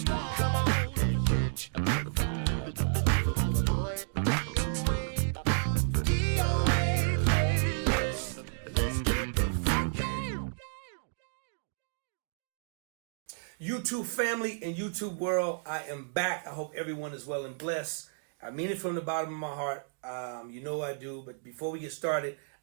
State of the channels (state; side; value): silent; left; digital silence